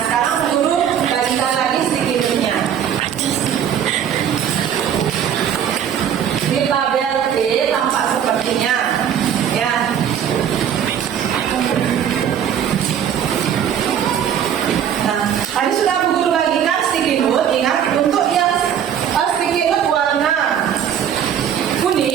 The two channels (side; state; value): left; quieter; 9.0 dB